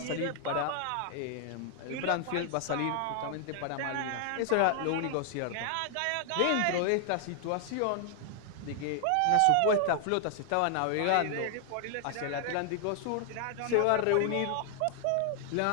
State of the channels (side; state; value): both; different; correlation 0.00